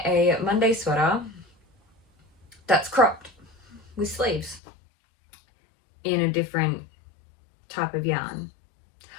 Monday sweater that's cropped with sleeves in a different type of yarn.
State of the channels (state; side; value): drops out; right; at 4.6 s